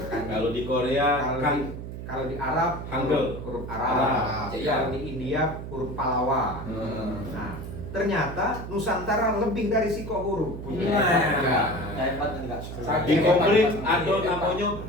kanji. Kalau di Korea Kalau kan di- kalau di Arab Hangul. huruf Arab. Arab. Jadi kalau di India huruf Palawa. Nah, ternyata Nusantara lebih dari siko huruf. Hebat enggak? di Komplit ada namanya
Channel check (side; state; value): right; noise; hum, 9 dB below the sound